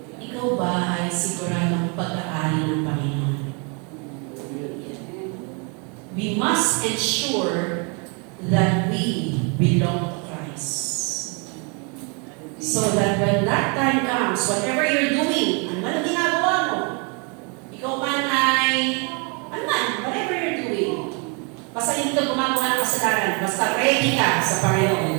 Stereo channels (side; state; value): left; quieter; 34.5 dB